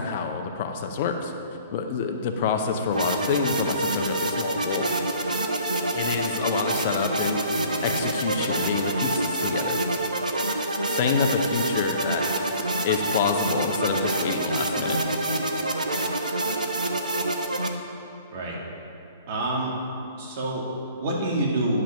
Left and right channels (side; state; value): both; inverted; correlation -0.52